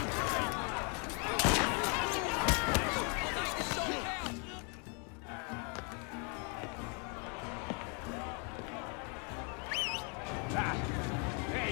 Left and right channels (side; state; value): right; quieter; 35.9 dB